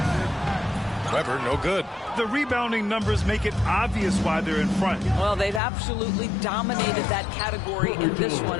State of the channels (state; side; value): drops out; right; at 5.6 s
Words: Weber, no good. The rebounding numbers make it obvious why they're in front. Well, they've absolutely dominated that category in this